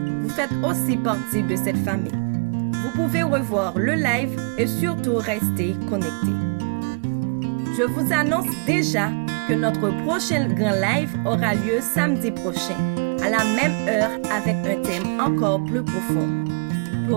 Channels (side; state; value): left; quieter; 36.7 dB